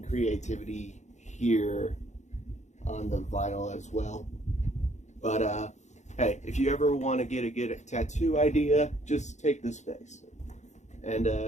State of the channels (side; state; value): right; late; 0.34 ms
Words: here on the vinyl as well. But hey, if you ever want to get a good tattoo idea, just take this face. And